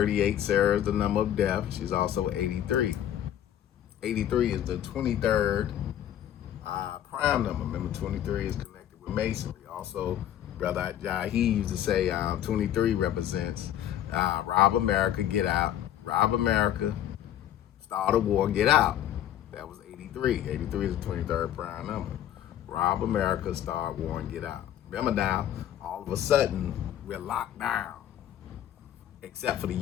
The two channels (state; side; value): quieter; right; 11.3 dB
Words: Sarah is the number of death. She's also 83. 83 is the 23rd prime number. Remember, 23 is connected with masonry. Also, Brother Jahi used to say 23 represents rob America, get out. Rob America, start a war, get out. That was 83. 83 is the 23rd prime number. Rob America, start war, and get out. Remember now, all of a sudden, we're locked down. Except for the